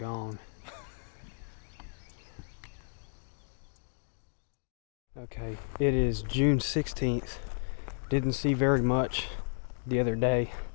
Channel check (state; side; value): silent; right; digital silence